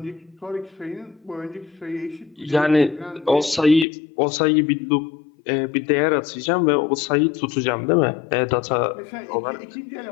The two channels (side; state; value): right; drops out; at 3.9 s